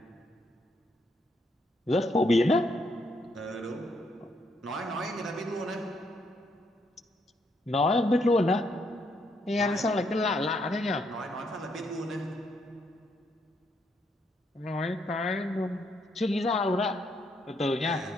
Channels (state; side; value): normal; both; correlation 0.74